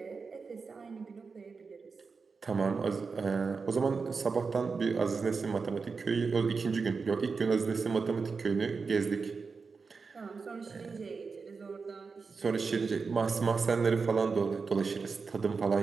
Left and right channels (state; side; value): quieter; left; 4.9 dB